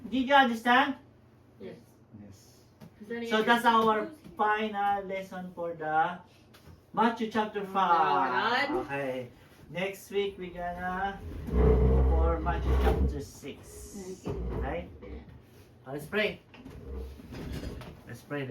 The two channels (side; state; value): both; identical; correlation 1.00